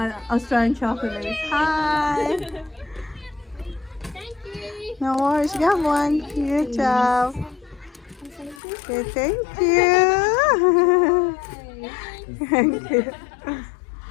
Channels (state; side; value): drops out; right; at 8.6 s